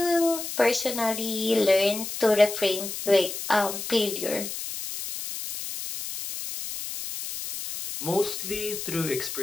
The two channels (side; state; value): left; noise; hiss, 7 dB below the sound